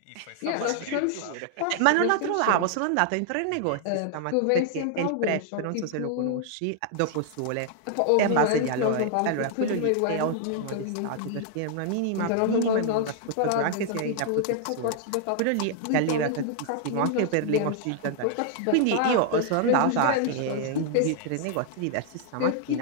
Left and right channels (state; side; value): different; both; correlation 0.00